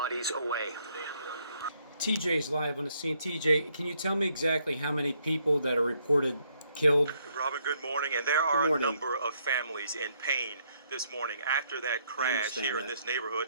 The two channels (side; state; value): both; inverted; correlation -0.71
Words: away. TJ's live on the scene. TJ, can you tell me exactly how many people that are reported killed? Robin, good morning. And there are a number of families in pain this morning after that crash here in this neighborhood,